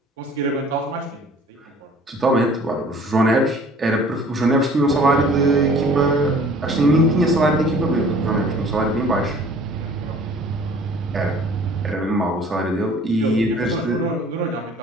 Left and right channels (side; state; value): both; normal; correlation 0.51